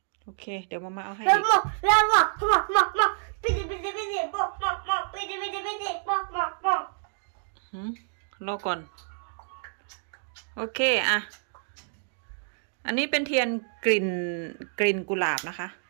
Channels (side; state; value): left; silent; digital silence